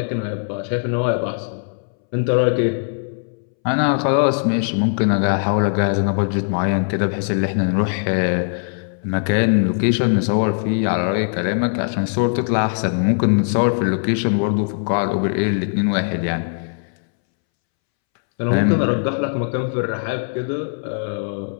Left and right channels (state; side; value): silent; right; 66 dB below the other